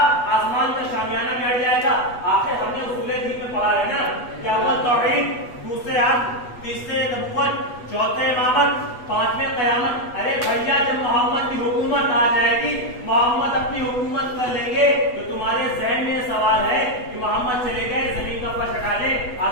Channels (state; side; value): late; right; 8.1 ms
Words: آسمان کا شامیانہ بھی ہٹ جائے گا۔ آخر ہم نے اصول دین میں پڑھا ہے نا کہ اول توحید، دوسرے عدل، تیسرے نبوت، چوتھے امامت، پانچویں قیامت۔ ارے بھیا، جب محمد کی حکومت آ جائے گی، محمد اپنی حکومت کر لیں گے، تو تمہارے ذہن میں سوال ہے کہ محمد چلے گئے، زمین کا فرش ہٹا لیں،